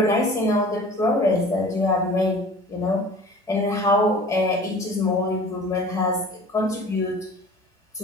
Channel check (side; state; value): both; normal; correlation 0.44